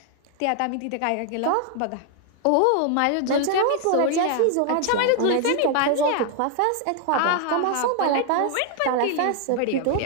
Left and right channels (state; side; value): different; both; correlation 0.00